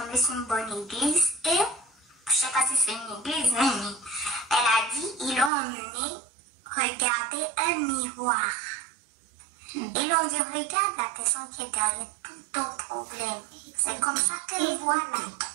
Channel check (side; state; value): left; drops out; at 5.5 s